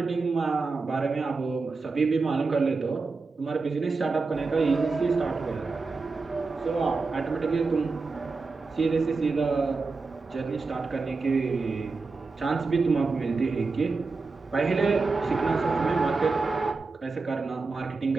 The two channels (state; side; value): quieter; left; 4.1 dB